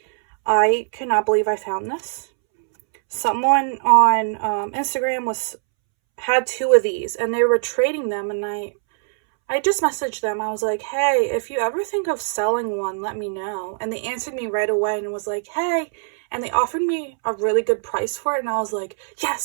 I cannot believe I found this. Someone on Instagram had two of these and they were trading them, and I just messaged them. I was like, hey, if you ever think of selling one, let me know. And they answered me right away and was like, hey, and they offered me a really good price for it, and I was like,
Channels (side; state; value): left; silent; 64 dB below the other